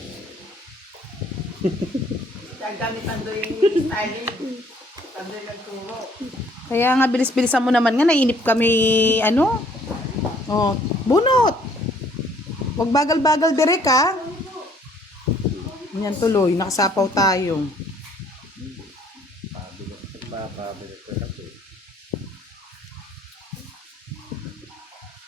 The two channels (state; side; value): normal; both; correlation 0.61